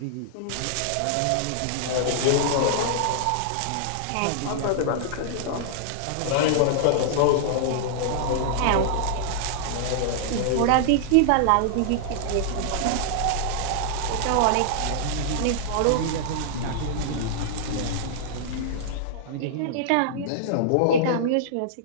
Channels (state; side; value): different; both; correlation -0.01